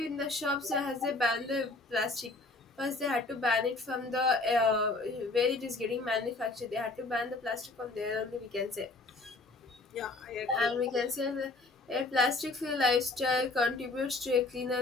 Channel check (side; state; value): right; quieter; 3.2 dB